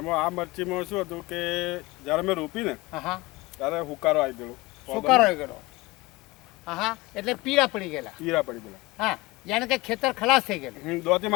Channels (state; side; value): quieter; right; 21.5 dB